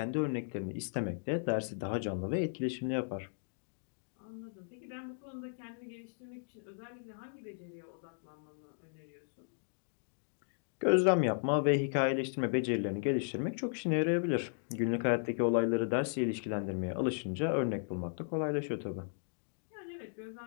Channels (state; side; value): silent; right; digital silence